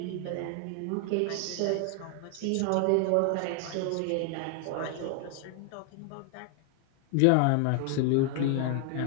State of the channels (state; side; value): different; both; correlation 0.00